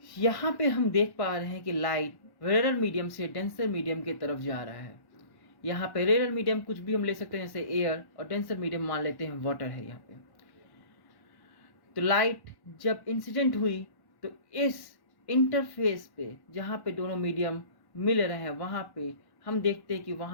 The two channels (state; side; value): late; right; 1.1 ms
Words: यहाँ पे हम देख पा रहे हैं कि लाइट रेयर मीडियम से डेंसर मीडियम की तरफ जा रहा है। यहाँ पे रेयर मीडियम कुछ भी हम ले सकते हैं, जैसे एयर, और डेंसर मीडियम मान लेते हैं वाटर है यहाँ पे। तो लाइट जब इंसिडेंट हुई तो इस इंटरफेस पे जहाँ पे दोनों मीडियम मिल रहे हैं वहाँ पे हम देखते हैं कि